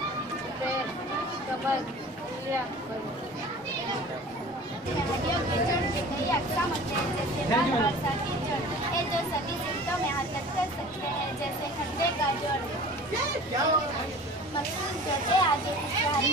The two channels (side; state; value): both; normal; correlation 0.42